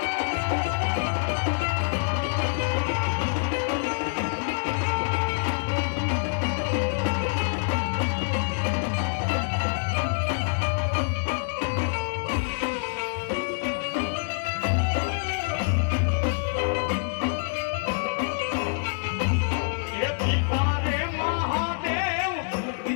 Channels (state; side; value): silent; right; 61 dB below the other